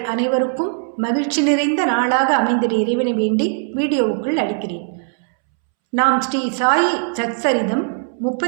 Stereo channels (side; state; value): left; silent; 66 dB below the other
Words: அனைவருக்கும் மகிழ்ச்சி நிறைந்த நாளாக அமைந்திட இறைவனை வேண்டி வீடியோவுக்குள் அளிக்கிறேன். நாம் ஸ்ரீ சாயி சச்சரிதம்